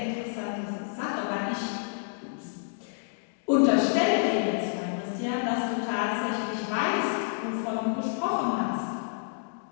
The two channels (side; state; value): right; silent; digital silence